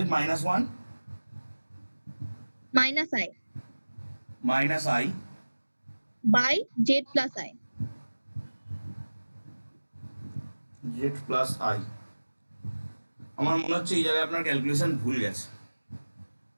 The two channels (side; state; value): both; inverted; correlation -1.00